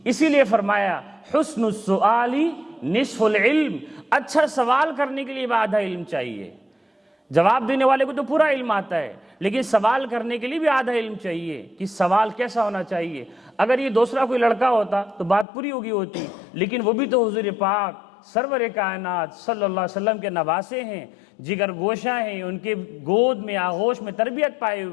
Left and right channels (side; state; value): right; drops out; at 15.5 s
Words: اسی لیے فرمایا حسن السؤال نصف العلم، اچھا سوال کرنے کے لیے آدھا علم چاہیے. جواب دینے والے کو تو پورا علم آتا ہے، لیکن سوال کرنے کے لیے بھی آدھا علم چاہیے کہ سوال کیسا ہونا چاہیے. اگر یہ دوسرا کوئی لڑکا ہوتا تو بات پوری ہوتی، لیکن وہ بھی تو حضور پاک سرور کائنات صلی اللہ علیہ وسلم کے نواسے ہیں، جگر گوشہ ہیں، ان کے گود میں آغوش میں تربیت پائے